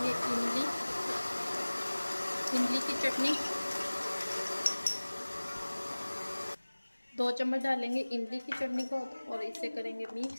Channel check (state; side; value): inverted; both; correlation -1.00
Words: इमली की चटनी। 2 चम्मच डालेंगे इमली की चटनी को और इसे करेंगे